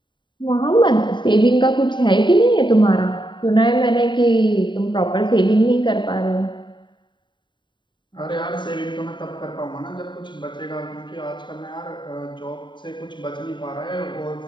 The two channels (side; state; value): right; late; 0.23 ms